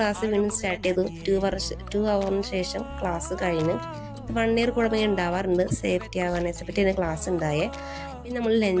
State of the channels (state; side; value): identical; both; correlation 1.00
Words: വീണ്ടും സ്റ്റാർട്ട് ചെയ്തു. 2 hourന് ശേഷം ക്ലാസ് കഴിഞ്ഞ് 1 year കൂടെ ഉണ്ടാവാറുണ്ട്. സേഫ്റ്റി അവയർനെസ്സിനെ പറ്റി ക്ലാസ് ഉണ്ടായേ. പിന്നെ നമ്മൾ